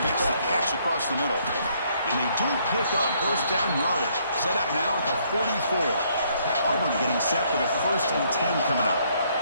makes the catch across the middle. And they do pick up first down yardage. Set up now at the 44. Auburn getting set for the 1st and 10 coming up.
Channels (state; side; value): inverted; both; correlation -0.68